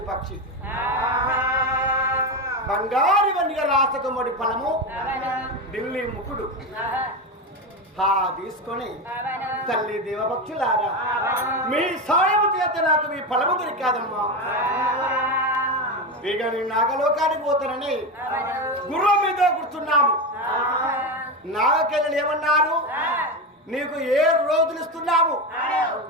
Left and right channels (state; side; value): normal; both; correlation 0.16